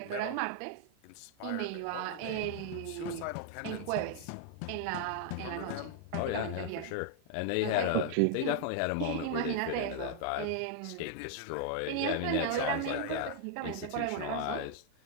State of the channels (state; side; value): different; both; correlation 0.00